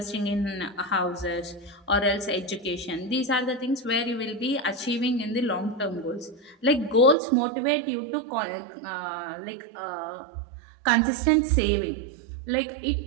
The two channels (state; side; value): drops out; left; at 7.2 s